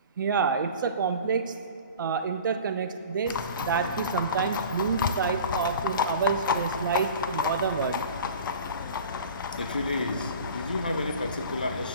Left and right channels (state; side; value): inverted; both; correlation -0.40